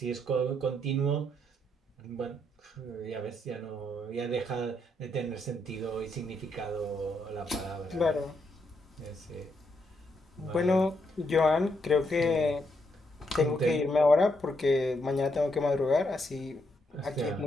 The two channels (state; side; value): normal; both; correlation 0.77